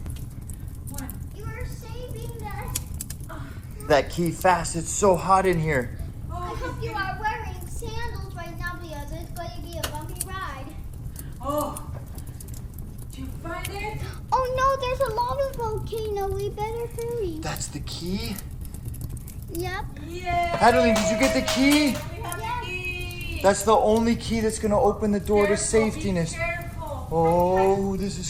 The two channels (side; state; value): both; identical; correlation 1.00